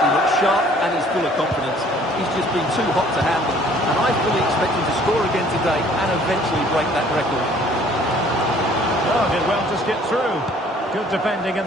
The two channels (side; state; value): both; normal; correlation 0.56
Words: looks sharp, and he's full of confidence. He's just been too hot to handle, and I fully expect him to score again today and eventually break that record. Oh, did well to skip through. Good defending in